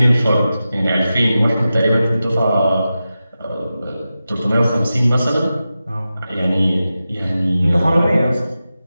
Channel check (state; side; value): inverted; both; correlation -0.93